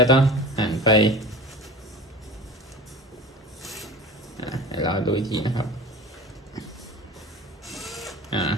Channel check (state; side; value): normal; both; correlation 0.36